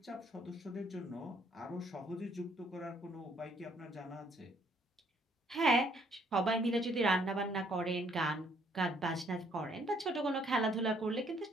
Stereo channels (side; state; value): both; normal; correlation 0.66